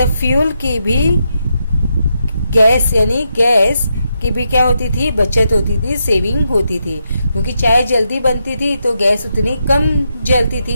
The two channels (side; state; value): both; inverted; correlation -0.83